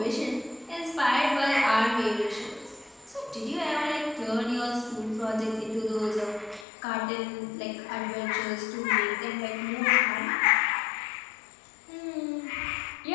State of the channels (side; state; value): right; drops out; at 6.7 s